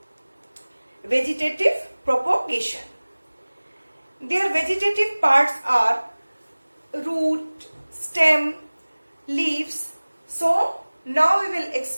vegetative propagation. Their vegetative parts are root, stem, leaves. So now we will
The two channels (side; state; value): both; inverted; correlation -1.00